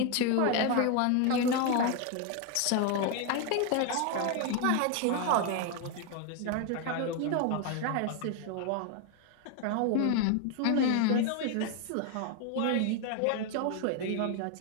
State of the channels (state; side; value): different; both; correlation 0.01